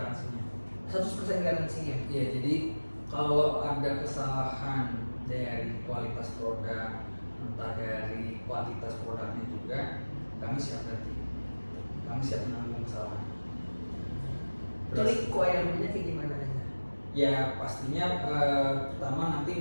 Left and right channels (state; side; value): inverted; both; correlation -1.00